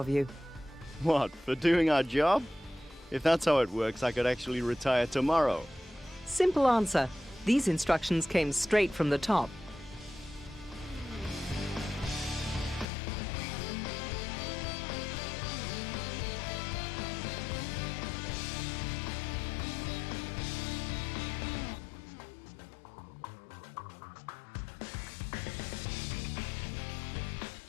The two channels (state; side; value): drops out; right; at 12.9 s